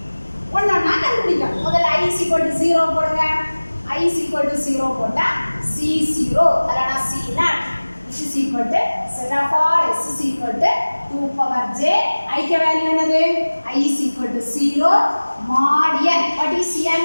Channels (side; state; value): both; inverted; correlation -1.00